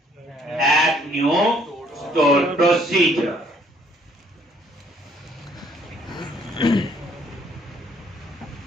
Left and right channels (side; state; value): both; normal; correlation 0.63